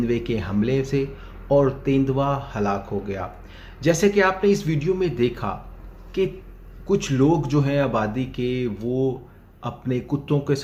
के हमले से और तेंदुआ हलाक हो गया। जैसे कि आपने इस वीडियो में देखा कि कुछ लोग जो हैं आबादी के वो अपने कुत्तों के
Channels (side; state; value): both; identical; correlation 1.00